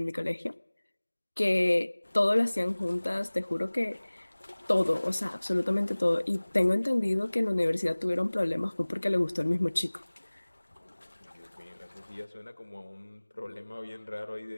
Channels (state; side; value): inverted; both; correlation -1.00